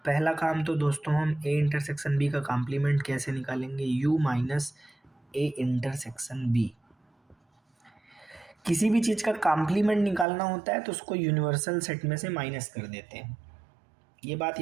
पहला काम तो दोस्तों हम ए इंटरसेक्शन बी का कॉम्प्लीमेंट कैसे निकालेंगे, u minus a intersection b. किसी भी चीज़ का कॉम्प्लीमेंट निकालना होता है तो उसको यूनिवर्सल सेट में से माइनस कर देते हैं, ये बात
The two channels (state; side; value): drops out; left; at 10.2 s